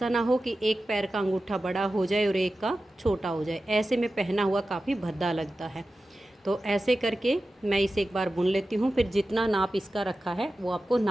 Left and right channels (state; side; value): normal; both; correlation 0.94